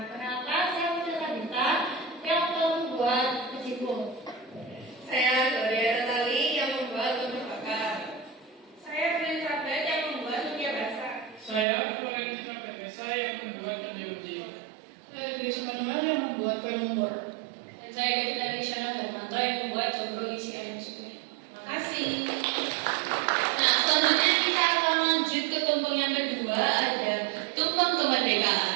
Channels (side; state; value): left; drops out; at 11.7 s